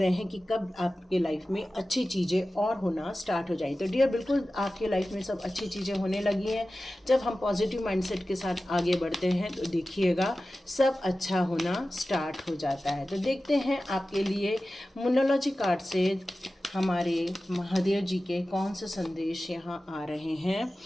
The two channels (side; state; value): both; normal; correlation 0.95